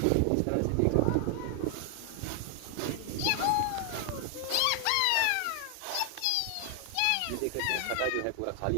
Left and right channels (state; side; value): different; both; correlation 0.00